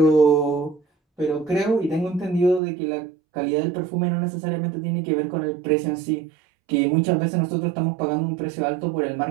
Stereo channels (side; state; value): left; drops out; at 2.6 s